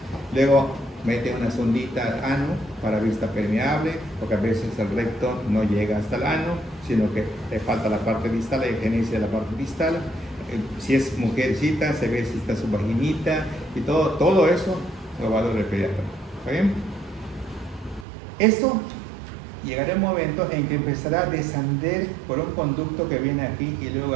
Luego mete una sondita al ano para vista permeable, porque a veces el recto no llega hasta el ano, sino que le falta la parte distal, la higieniza de la parte distal. Si es mujercita, se ve si está su vaginita y todo eso lo va a ver el pediatra. ¿Está bien? Esto llegará un momento en que empezará a descender por un conducto que viene aquí y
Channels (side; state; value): left; drops out; at 18.1 s